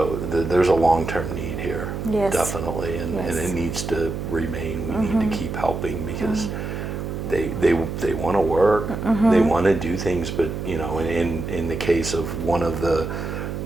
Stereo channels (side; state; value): right; noise; hum, 5 dB below the sound